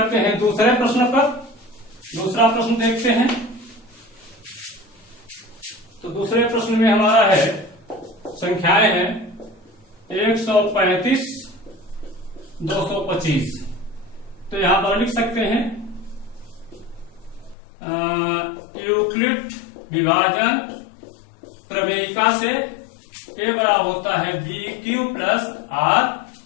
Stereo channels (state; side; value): drops out; right; at 17.6 s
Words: हैं दूसरे प्रश्न पर। दूसरा प्रश्न देखते हैं। तो दूसरे प्रश्न में हमारा है संख्याएं हैं 135 225। तो यहां पर लिख सकते हैं यूक्लिड विभाजन प्रमेयिका से a बराबर होता है BQ प्लस R,